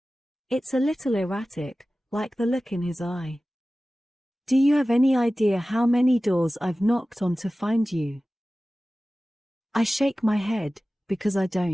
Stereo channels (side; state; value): both; normal; correlation 0.96